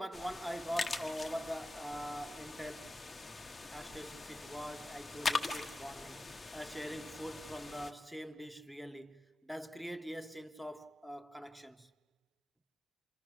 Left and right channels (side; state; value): both; normal; correlation 0.94